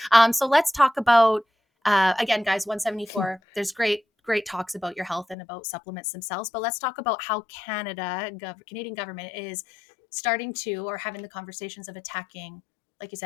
So let's talk about. Again, guys, 174. There's great talks about your health and about supplements themselves, but let's talk about how Canadian government is starting to or having the conversations of attacking, like you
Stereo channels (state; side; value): drops out; right; at 5.4 s